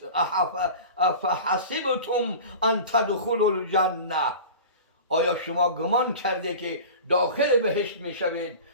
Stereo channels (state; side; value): inverted; both; correlation -0.36